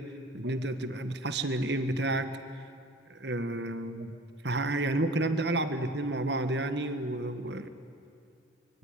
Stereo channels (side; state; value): both; normal; correlation 0.44